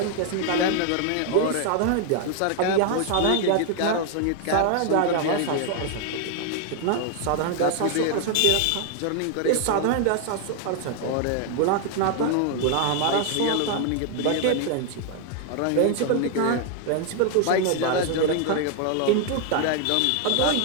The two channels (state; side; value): different; both; correlation 0.00